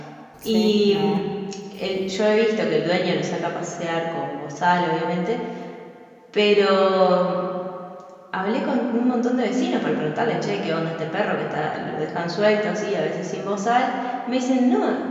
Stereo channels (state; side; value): identical; both; correlation 1.00